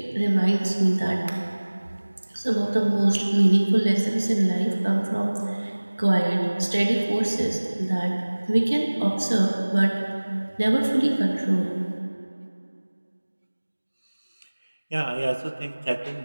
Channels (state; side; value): inverted; both; correlation -1.00